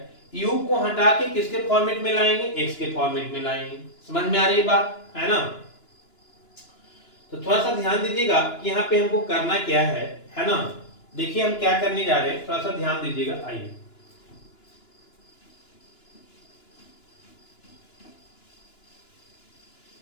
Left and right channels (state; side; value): late; right; 2.9 ms